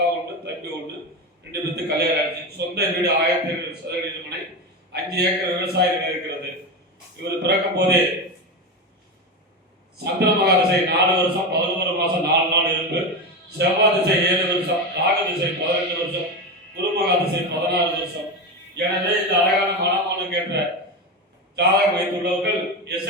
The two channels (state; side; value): normal; both; correlation 0.18